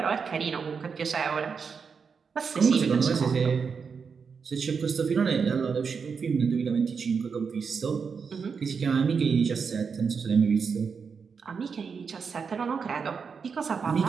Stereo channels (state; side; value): quieter; left; 5.8 dB